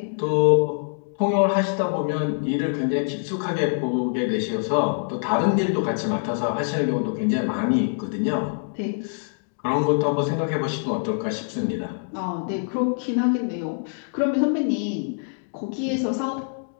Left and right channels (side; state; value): right; silent; digital silence